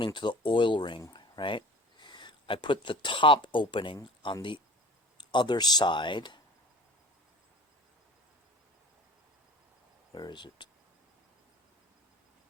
to the oil ring, right? I put the top opening on the other side. Where is it?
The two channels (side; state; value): both; normal; correlation 0.43